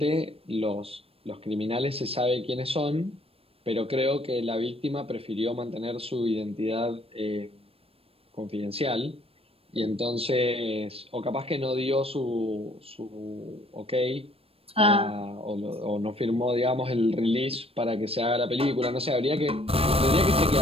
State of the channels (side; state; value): left; late; 0.28 ms